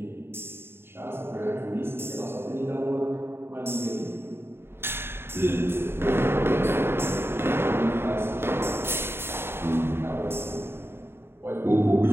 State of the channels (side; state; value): left; late; 0.11 ms